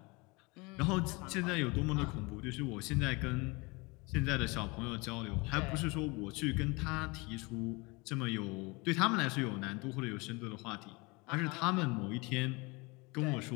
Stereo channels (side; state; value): right; quieter; 26.5 dB